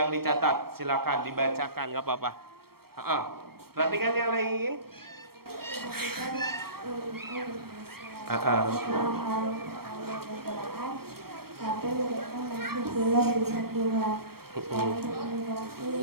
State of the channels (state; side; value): late; left; 0.94 ms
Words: silakan dibacakan, nggak apa-apa. Perhatikan yang lain. Tapi mereka masih belum bisa keluar. Dan